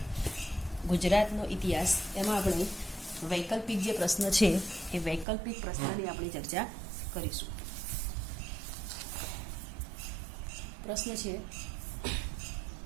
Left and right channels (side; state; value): left; drops out; at 5.2 s